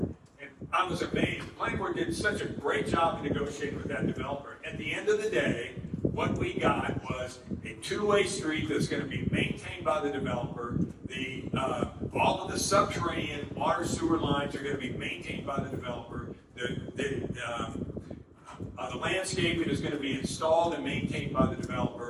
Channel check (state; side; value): identical; both; correlation 1.00